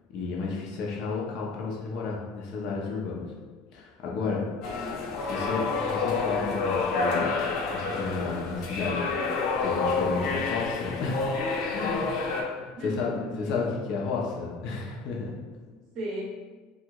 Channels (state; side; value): quieter; right; 3.8 dB